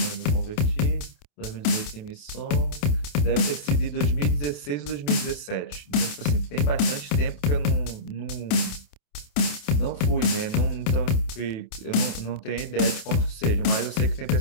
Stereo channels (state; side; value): late; right; 28 ms